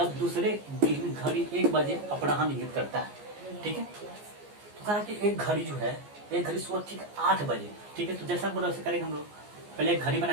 दूसरे दिन घड़ी 1 बजे अपराह्न इंगित करता है, ठीक है। तो कह रहा है कि एक घड़ी जो है, एक घड़ी सुबह ठीक 8 बजे, ठीक है। तो जैसा बोला वैसे करेंगे हम लोग, पहले एक घड़ी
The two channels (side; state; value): left; late; 14 ms